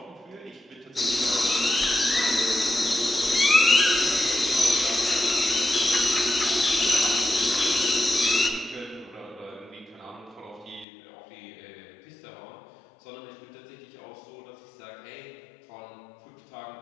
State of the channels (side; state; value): right; drops out; at 10.9 s